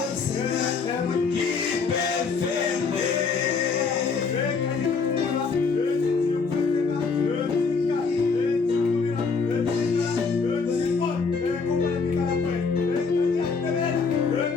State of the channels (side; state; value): right; quieter; 5.0 dB